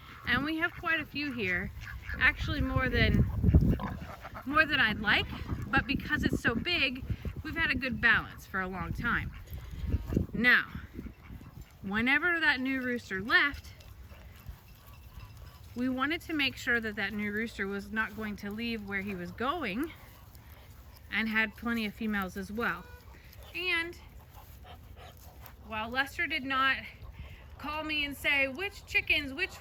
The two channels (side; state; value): both; identical; correlation 1.00